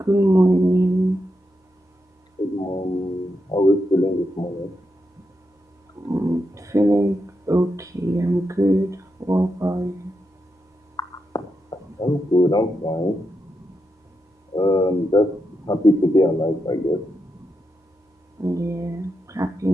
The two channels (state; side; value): normal; both; correlation 0.85